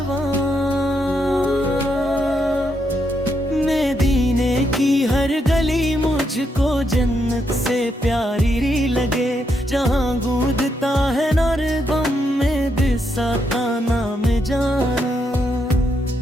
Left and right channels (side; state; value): both; normal; correlation 0.79